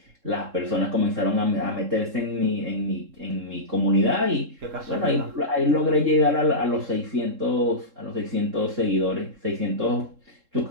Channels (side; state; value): left; late; 3.7 ms